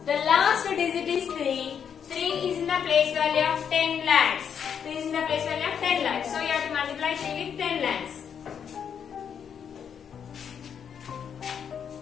The last digit is 3. 3 is in the place value of 10 lakhs. 3 is in the place value of 10 lakhs. So, you have to multiply 3 with 10 lakhs.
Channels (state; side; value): quieter; right; 7.8 dB